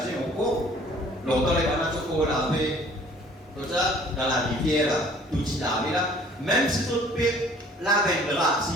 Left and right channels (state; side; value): normal; both; correlation 0.54